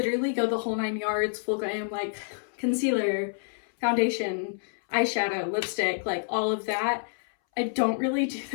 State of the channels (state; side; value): silent; right; 59 dB below the other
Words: go the whole 9 yards, full glam, like concealer, foundation, eyeshadow, lipstick, like all of that. I don't really do